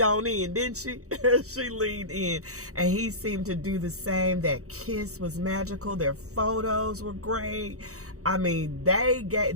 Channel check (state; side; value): late; left; 0.65 ms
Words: on in, didn't she? She leaned in, and he seemed to do the same. That kiss was magical. Their photos were great. I mean,